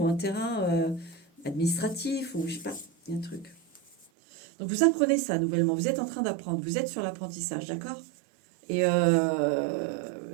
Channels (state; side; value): drops out; left; at 4.0 s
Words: un terrain administratif, ou je sais pas, il y a un truc. Donc vous apprenez ça nouvellement, vous êtes en train d'apprendre, vous êtes sur l'apprentissage, d'accord? Et